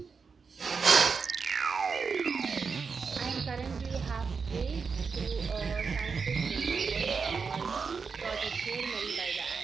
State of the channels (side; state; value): left; quieter; 5.3 dB